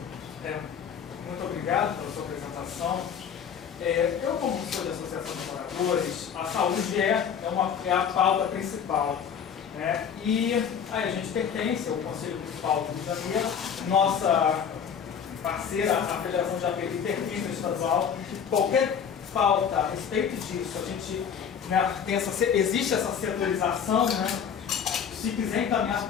Muito obrigado pela sua apresentação. Eu, como sou da Associação de Moradores, a saúde é a pauta principal. E aí a gente pertence ao Conselho Municipal do Rio de Janeiro, nossa parceira, a Federação de API, pertence ao estadual. Qualquer pauta a respeito disso, a gente existe essa setorização, se quiser encaminhar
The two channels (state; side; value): quieter; right; 7.5 dB